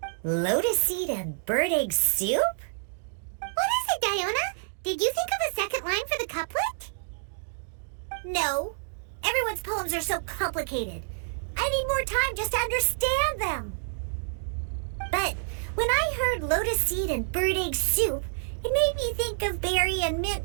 Lotus seed and bird egg soup? What is it, Diona? Did you think of a second line for the couplet? No. Everyone's poems are so complicated. I need more time just to understand them. But when I heard lotus seed and bird egg soup, it made me think of berry and mint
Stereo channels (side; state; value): left; silent; digital silence